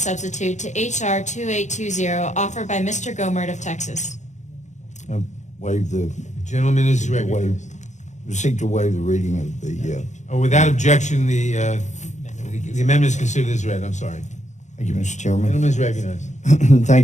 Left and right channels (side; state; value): right; late; 0.34 ms